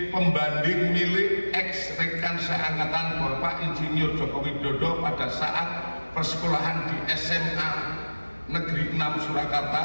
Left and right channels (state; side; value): inverted; both; correlation -1.00